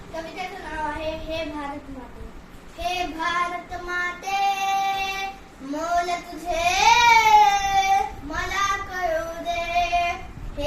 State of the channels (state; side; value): identical; both; correlation 1.00